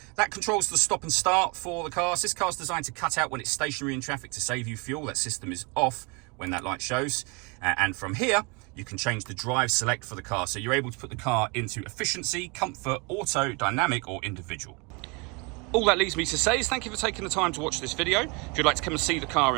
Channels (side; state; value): left; quieter; 29.8 dB